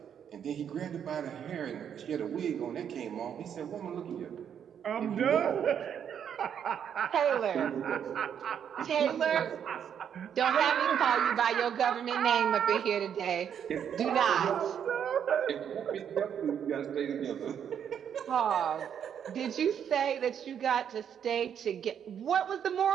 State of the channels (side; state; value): left; quieter; 8.5 dB